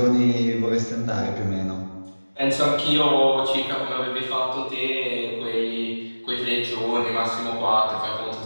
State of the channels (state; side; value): inverted; both; correlation -1.00